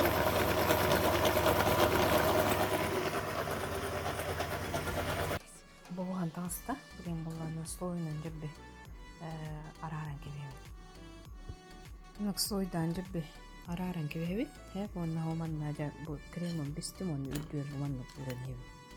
Болған таңыста білген болғаны слойынан жүрбі араран кебебі. Нық слойдан жүрбі араран кебебі. Хәп онна оманна бұл кремон бістім оны үлдер оманнық үрен ебі.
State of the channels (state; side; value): identical; both; correlation 1.00